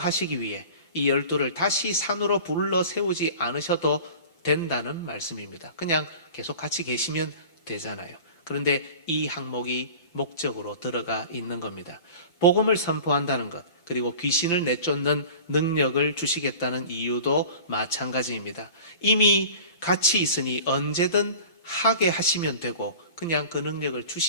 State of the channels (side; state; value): right; late; 5.9 ms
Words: 하시기 위해 이 12를 다시 산으로 불러 세우지 않으셔도 된다는 말씀입니다. 그냥 계속 같이 계시면 되잖아요. 그런데 이 항목이 목적으로 들어가 있는 겁니다. 복음을 선포한다는 것, 그리고 귀신을 내쫓는 능력을 주시겠다는 이유도 마찬가지입니다. 이미 같이 있으니 언제든 하게 하시면 되고 그냥 그 능력을